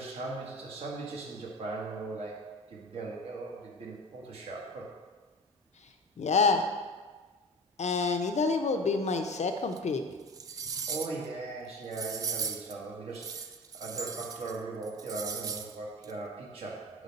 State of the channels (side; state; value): both; normal; correlation 0.33